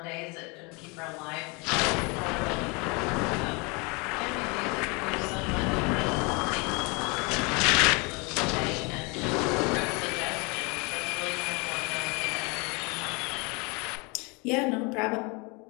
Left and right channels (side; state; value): right; quieter; 29.4 dB